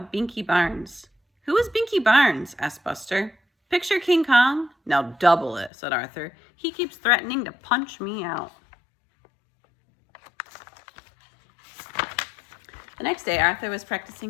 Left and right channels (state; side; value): drops out; right; at 5.7 s